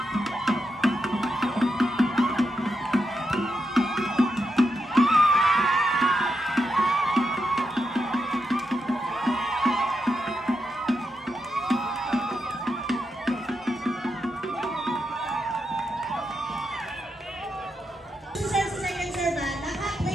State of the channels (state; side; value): normal; both; correlation 0.85